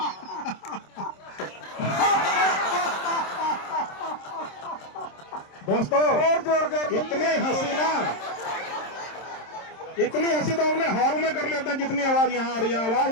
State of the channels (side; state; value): right; late; 27 ms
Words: दोस्तों और जोर के इतनी हंसी ना, इतनी हंसी तो अपने हॉल में कर लेते हैं जितनी आवाज यहाँ आ रही है।